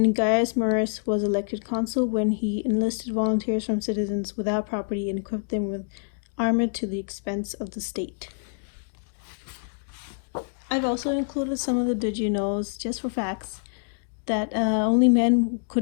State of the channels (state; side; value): silent; right; digital silence